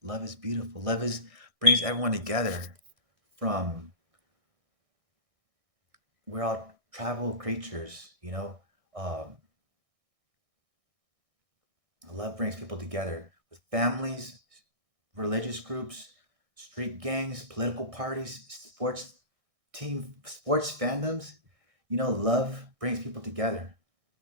Love is beautiful. Love is brings everyone together. From we're all tribal creatures, Um, love brings people together with families, religious groups, street gangs, political parties, sports fandoms. Love brings people together.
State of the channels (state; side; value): late; left; 1.6 ms